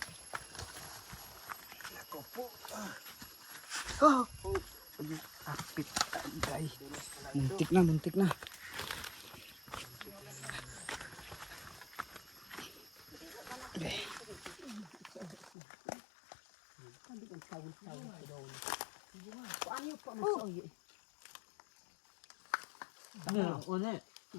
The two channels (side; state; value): right; drops out; at 15.5 s